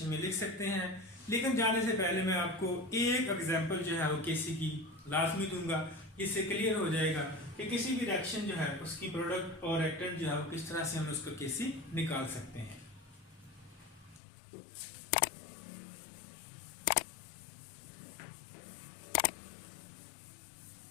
में लिख सकते हैं। लेकिन जाने से पहले मैं आपको एक एग्जांपल जो है वो केसी की लाजमी दूंगा, इससे क्लियर हो जाएगा कि किसी भी रिएक्शन जो है उसकी प्रोडक्ट और रिएक्टेंट जो है वो किस तरह से हम उसको केसी निकाल सकते हैं।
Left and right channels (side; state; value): right; drops out; at 14.2 s